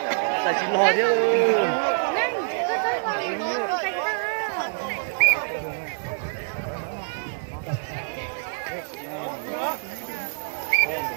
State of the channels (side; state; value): left; silent; digital silence